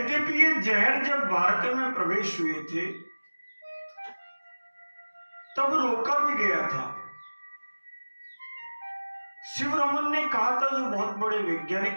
ये जहर जब भारत में प्रवेश हुए थे तब रोका भी गया था। शिवरमन ने कहा था, जो बहुत बड़े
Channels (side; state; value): both; inverted; correlation -1.00